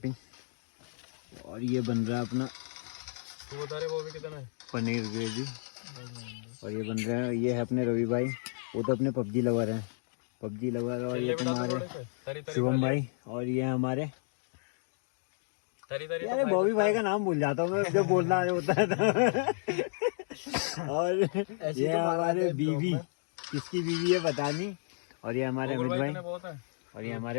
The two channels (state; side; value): silent; right; digital silence